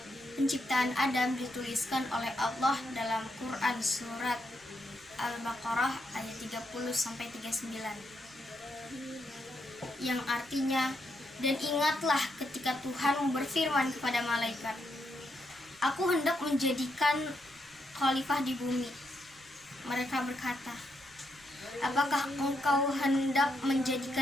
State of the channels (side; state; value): right; noise; rumble, 28 dB below the sound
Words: Penciptaan Adam dituliskan oleh Allah dalam Quran surat Al-Baqarah ayat 30-39 yang artinya, dan ingatlah ketika Tuhan berfirman kepada malaikat, aku hendak menjadikan khalifah di bumi. Mereka berkata, apakah engkau hendak